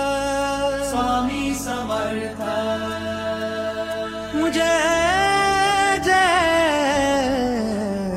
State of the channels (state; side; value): identical; both; correlation 1.00